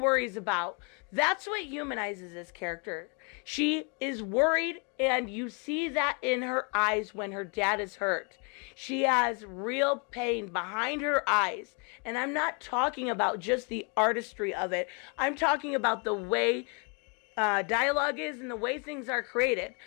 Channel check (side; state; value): right; quieter; 34.8 dB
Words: about. That's what humanizes this character. She is worried, and you see that in her eyes when her dad is hurt. She has real pain behind her eyes. And I'm not talking about just the artistry of it. I'm talking about the way dialogue is and the way things are created.